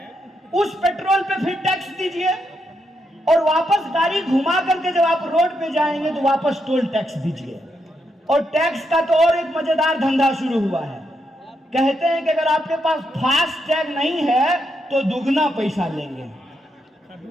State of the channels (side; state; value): both; normal; correlation 0.81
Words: उस पेट्रोल पे फिर टैक्स दीजिए, और वापस गाड़ी घुमा करके जब आप रोड पे जाएंगे तो वापस टोल टैक्स दीजिए। और टैक्स का तो और एक मजेदार धंधा शुरू हुआ है। कहते हैं कि अगर आपके पास फास्ट टैग नहीं है तो दुगना पैसा लेंगे।